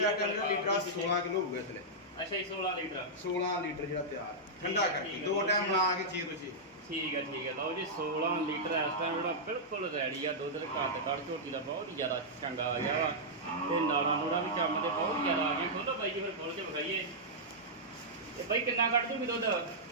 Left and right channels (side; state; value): both; normal; correlation -0.09